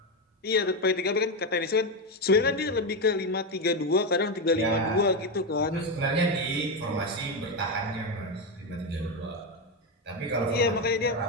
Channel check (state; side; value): normal; both; correlation 0.10